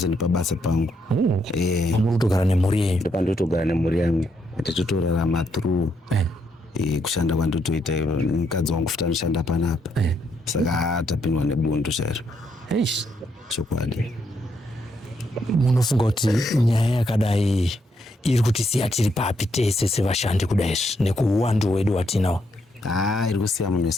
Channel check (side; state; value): both; normal; correlation 0.77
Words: nepabasa pangu. Muri kutogara nemhuri yenyu? Ndopandotogara nemhuri yangu. Tichitorarama through kushanda kwandotoita mukadzi wangu futi anoshanda panapa. Saka tapindwa nebundu chairo. Chokwadi. Munofunga kuti nyaya yakadai iri kutisiya tiri papi tese sevashandi kudai nekuuwandu wedu watinawo? Iri kusiya munhu